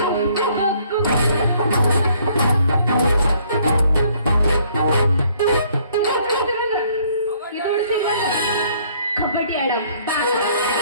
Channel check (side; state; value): both; inverted; correlation -0.63